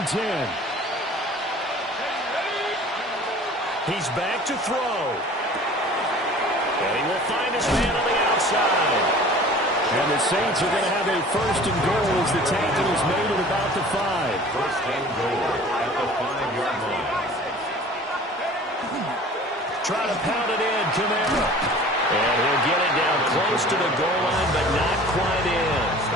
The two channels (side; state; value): both; normal; correlation 0.45